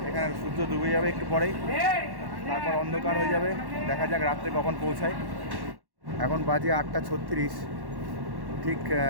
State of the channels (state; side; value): late; left; 1.1 ms